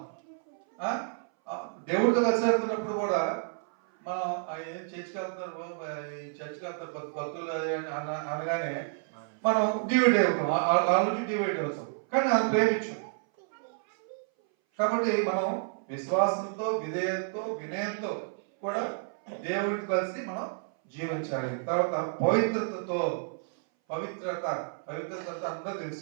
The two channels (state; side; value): silent; left; 58 dB below the other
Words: దేవుడితో కలిసి వెళ్తున్నప్పుడు కూడా మనం ఏం చర్చికి వెళ్తారు భక్తులు అనగానే మనం డివైడ్ అవుతాం, వాళ్ళకి డివైడ్ అవుతాం. కానీ వాళ్ళు ప్రేమించాం. కాబట్టి మనం విశ్వాసంతో, విధేయంతో, వినయంతో కూడా దేవుడికి కలిసి మనం జీవించాలి. తర్వాత పవిత్రతతో, పవిత్రత అందరూ